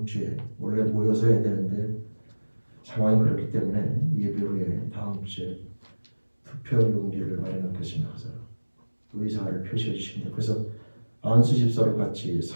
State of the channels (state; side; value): inverted; both; correlation -1.00